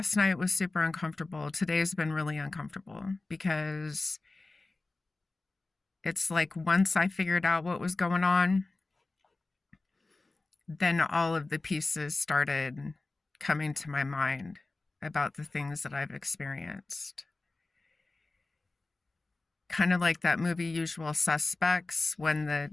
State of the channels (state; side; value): quieter; right; 3.3 dB